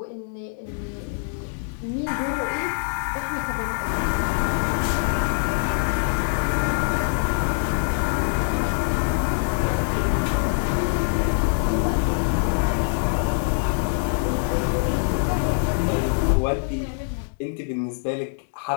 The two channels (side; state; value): right; silent; digital silence